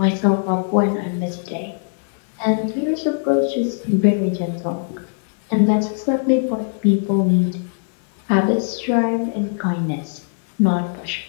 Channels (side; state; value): right; silent; digital silence